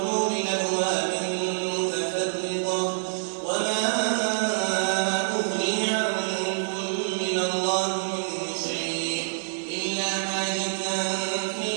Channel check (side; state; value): left; silent; digital silence